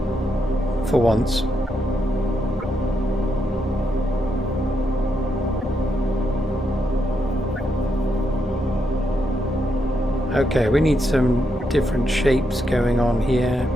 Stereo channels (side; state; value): both; normal; correlation 0.80